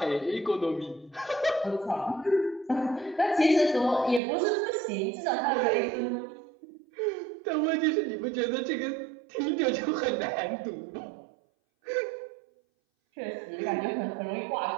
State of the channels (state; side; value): drops out; left; at 4.2 s